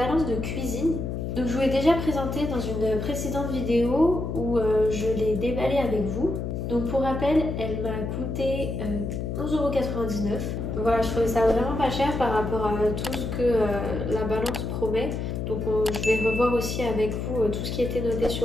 de cuisine. Donc je vous l'ai déjà présentée dans une précédente vidéo où je l'ai déballée avec vous. Donc pour rappel, elle m'a coûté 11,99 €. Donc voilà, je trouvais ça vraiment pas cher par rapport à tout ce que la balance promet. Donc je vais revoir aussi avec vous tout ce qui était noté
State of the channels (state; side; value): noise; left; hum, 3 dB below the sound